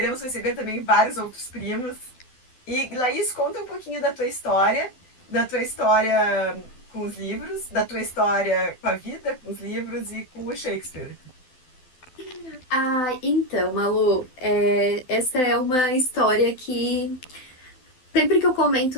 receber também vários outros primos. E, Laís, conta um pouquinho da tua história com os livros, da tua história com a vida, com os livros e com o Shakespeare. Então, Malu, essa é uma história que sempre que eu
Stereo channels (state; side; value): late; right; 12 ms